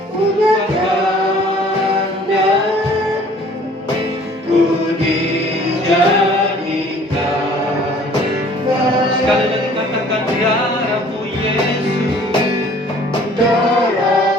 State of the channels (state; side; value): normal; both; correlation 0.53